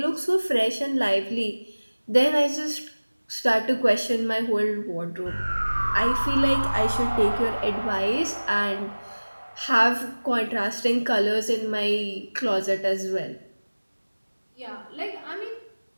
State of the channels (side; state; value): both; inverted; correlation -1.00